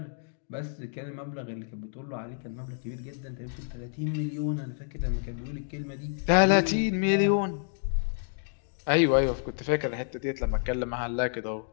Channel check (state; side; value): silent; right; digital silence